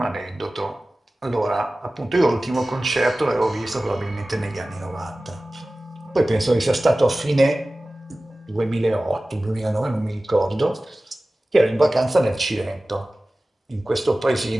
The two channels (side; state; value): both; normal; correlation 0.97